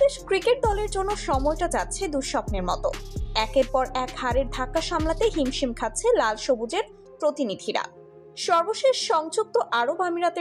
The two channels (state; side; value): identical; both; correlation 1.00